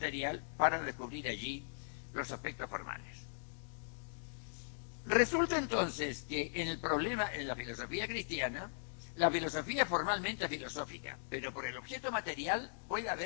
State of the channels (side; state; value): right; silent; digital silence